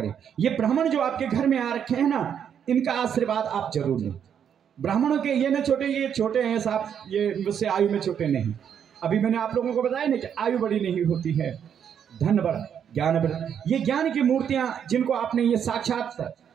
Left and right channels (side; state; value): left; quieter; 8.4 dB